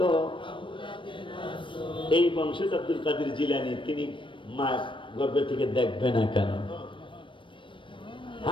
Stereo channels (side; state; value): right; late; 0.24 ms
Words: এই বংশে আব্দুল কাদের জিলানী, তিনি মা গর্ভে থেকে দেখবে না কেন?